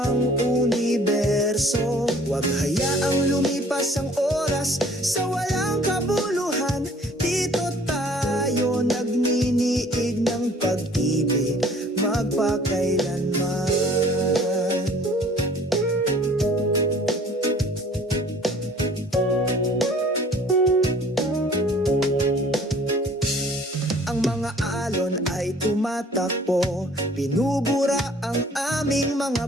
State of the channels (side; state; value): both; normal; correlation 0.53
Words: universo. Huwag hayaang lumipas ang oras sa walang kabuluhan. Dito tayo nagniniig ng pag-ibig magpakailanman. Tumatakbo, binubura ang aming